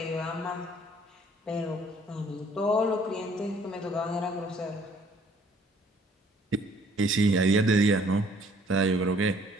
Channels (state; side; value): normal; both; correlation 0.59